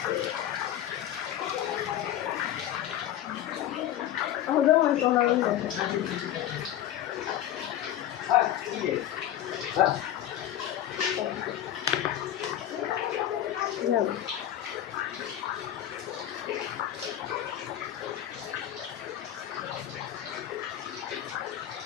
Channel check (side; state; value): right; quieter; 11.8 dB